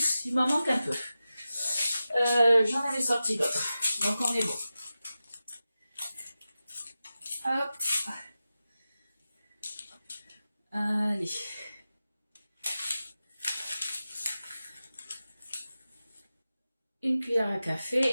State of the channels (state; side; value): inverted; both; correlation -0.93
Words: Il m'en manque un peu. J'en avais sorti d'autres. Donc on est bon. Hop. Allez. Une cuillère à